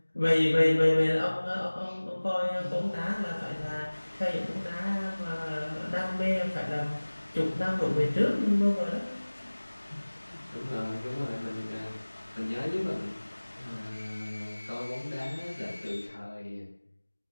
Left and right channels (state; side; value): inverted; both; correlation -1.00